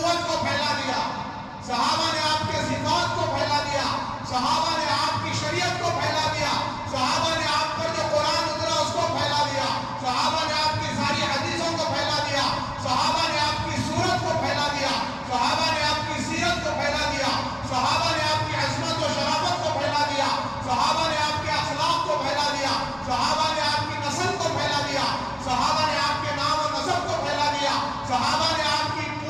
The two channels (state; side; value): identical; both; correlation 1.00